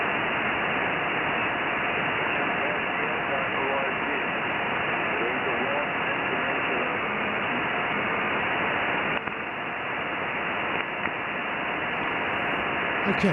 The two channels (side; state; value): both; identical; correlation 1.00